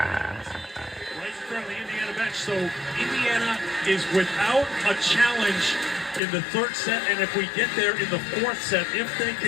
right in front of the Indiana bench. So Indiana is without a challenge in the third set, and if we get there in the fourth set, if they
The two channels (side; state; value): right; drops out; at 6.2 s